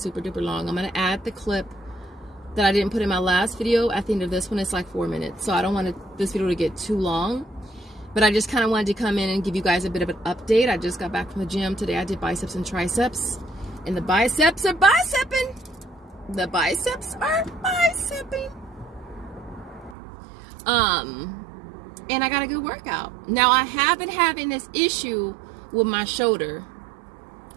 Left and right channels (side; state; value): left; drops out; at 20.0 s